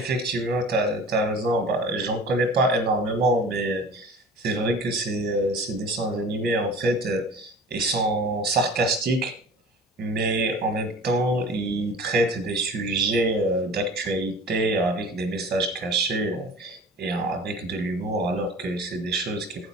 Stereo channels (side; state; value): both; normal; correlation 0.41